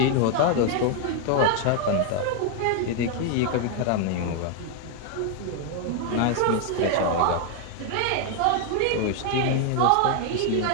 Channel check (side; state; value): both; different; correlation 0.01